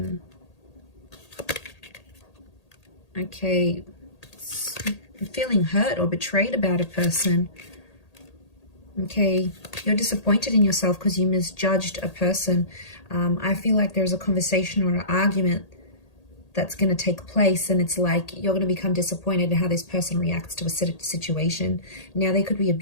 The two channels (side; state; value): right; late; 1.8 ms